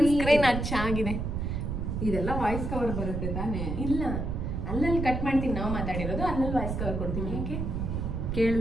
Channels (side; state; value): right; noise; rumble, 2 dB below the sound